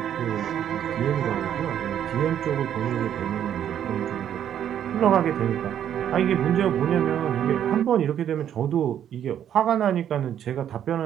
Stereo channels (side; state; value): left; quieter; 9.9 dB